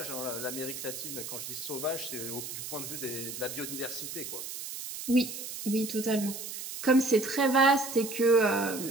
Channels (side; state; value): right; noise; hiss, 8 dB below the sound